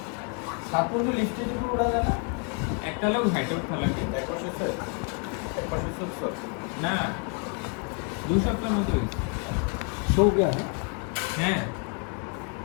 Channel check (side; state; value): right; quieter; 36.7 dB